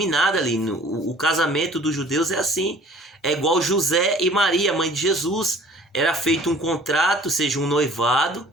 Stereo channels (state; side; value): normal; both; correlation 0.50